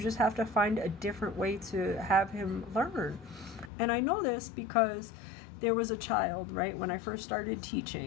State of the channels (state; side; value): drops out; right; at 3.7 s